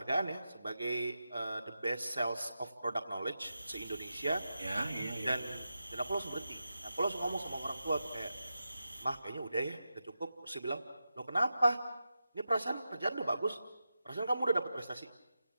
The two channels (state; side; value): inverted; both; correlation -0.90